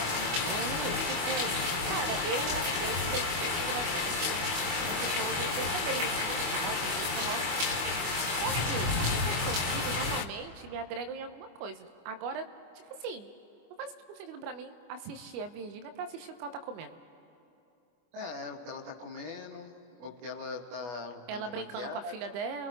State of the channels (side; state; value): left; late; 25 ms